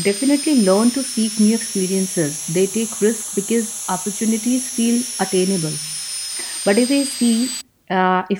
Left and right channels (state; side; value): identical; both; correlation 1.00